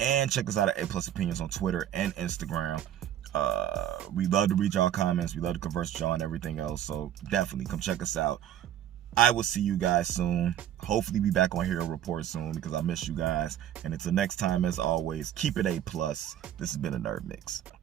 check us out at A+ Opinions on Twitter and Instagram. We love to read y'all comments. We love to converse with y'all and everything else. So definitely come check us out. I will see you guys soon. Hopefully be back on Hero Report soon, because I miss you guys. And until next time, as always, keep it A+. This has been a Nerd Mix.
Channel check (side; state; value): left; quieter; 11.0 dB